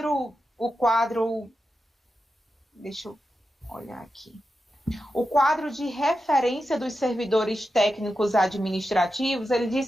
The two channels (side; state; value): both; normal; correlation 0.90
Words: deixa eu olhar aqui. O quadro de referência dos servidores técnicos administrativos, ele